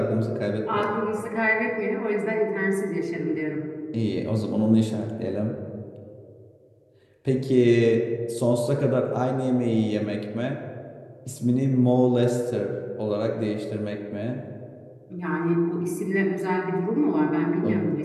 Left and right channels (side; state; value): both; identical; correlation 1.00